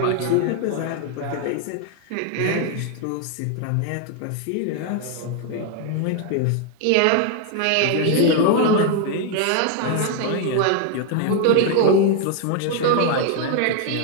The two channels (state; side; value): different; both; correlation 0.01